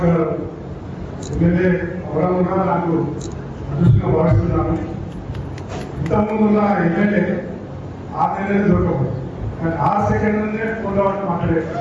గారు ఎమ్మెల్యే ఎవరన్నా నాకు అదృష్టంగా భావిస్తున్నాను. ఇంతకుముందున్న ఎమ్మెల్యే 6 నెలలు దొరకదు, కానీ 6 సెకండ్లనే ఫోన్లో మాట్లాడే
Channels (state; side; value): identical; both; correlation 1.00